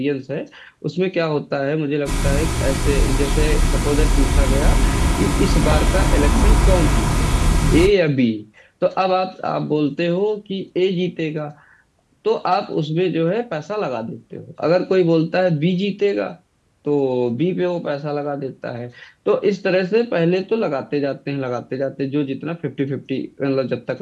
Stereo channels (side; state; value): both; identical; correlation 1.00